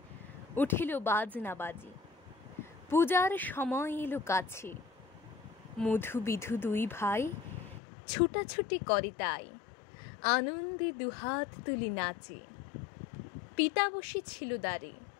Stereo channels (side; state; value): right; drops out; at 7.8 s